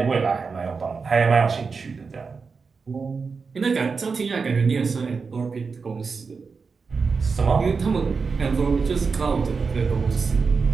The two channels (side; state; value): left; quieter; 4.9 dB